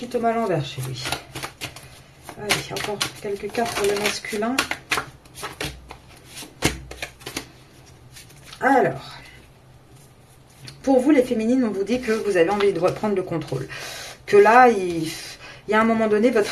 tombe à l'envers chez lui. Allez, encore quelques cartes pour le masculin. Alors, pour vous les féminines, on vous dit que vous avez envie de reprendre le contrôle. Que là, il y a un moment donné, votre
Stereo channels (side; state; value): both; identical; correlation 1.00